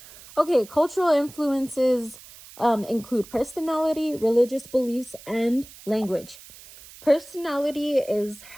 Okay, cultural influences include personality, religious beliefs, and language. Personality is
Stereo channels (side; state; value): right; noise; hiss, 19 dB below the sound